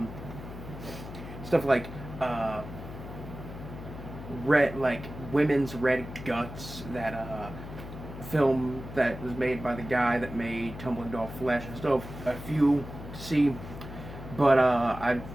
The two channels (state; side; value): noise; left; hum, 11 dB below the sound